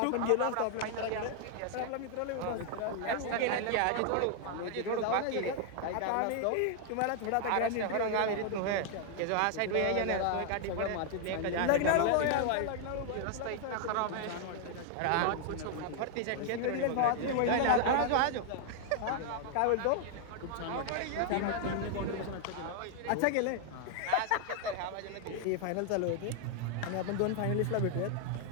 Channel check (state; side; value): different; both; correlation 0.00